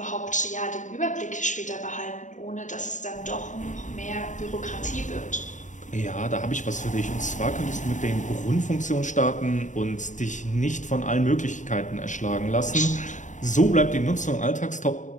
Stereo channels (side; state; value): right; late; 0.36 ms